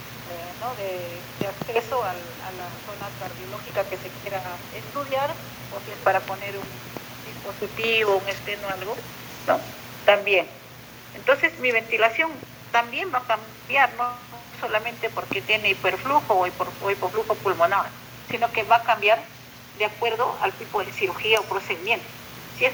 acceso a la zona cardiológica que se quiera estudiar, o si es para poner un dispositivo, un esteno, algo, ¿no? También. Entonces mi ventilación también va a cambiar, no solamente porque tiene hiperflujo o hipoflujo pulmonar, sino que va a cambiar de acuerdo al tipo de cirugía o procedimiento. Si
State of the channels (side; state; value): both; identical; correlation 1.00